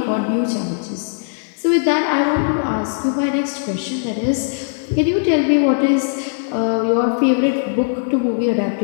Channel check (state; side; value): silent; right; digital silence